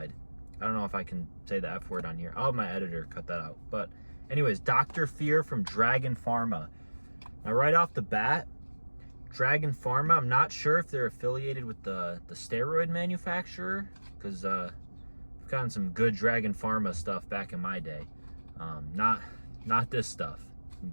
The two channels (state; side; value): inverted; both; correlation -1.00